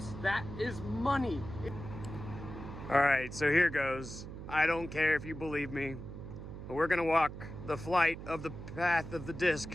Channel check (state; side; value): noise; right; hum, 10 dB below the sound